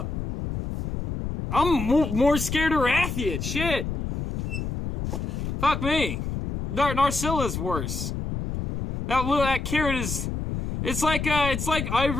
I'm more scared of Rathian, shit. Fuck me. Narcilla's worse. That Kirin is... It's like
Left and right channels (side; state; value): left; noise; rumble, 3 dB below the sound